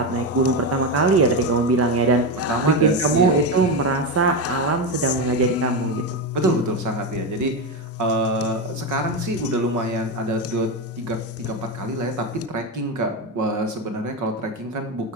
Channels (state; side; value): normal; both; correlation 0.13